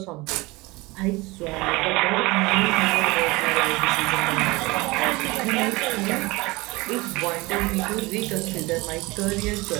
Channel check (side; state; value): left; quieter; 22.8 dB